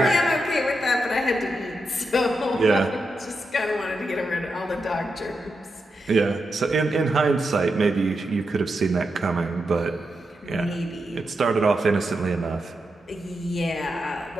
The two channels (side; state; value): both; normal; correlation 0.86